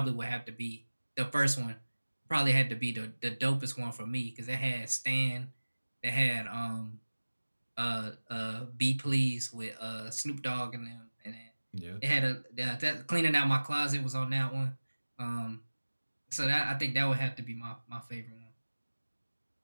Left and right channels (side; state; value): both; inverted; correlation -1.00